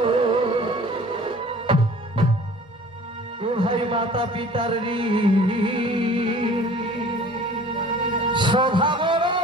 ও ভাই মাতা পিতার ঋণ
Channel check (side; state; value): both; normal; correlation 0.47